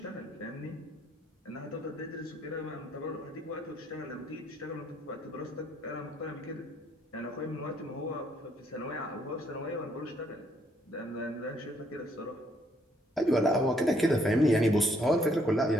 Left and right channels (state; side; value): normal; both; correlation 0.69